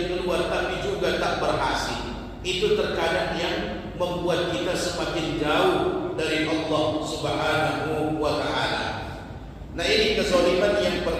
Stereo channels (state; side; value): identical; both; correlation 1.00